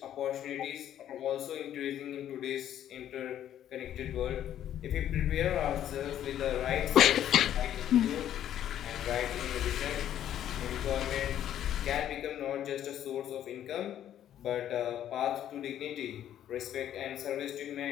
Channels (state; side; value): quieter; right; 11.0 dB